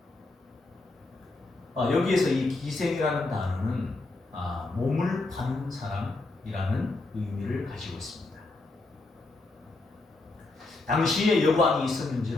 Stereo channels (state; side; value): quieter; right; 3.2 dB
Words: 여기에서 이 기생이라는 단어는 몸을 파는 사람이라는 의미를 가지고 있습니다. 당시에 여관이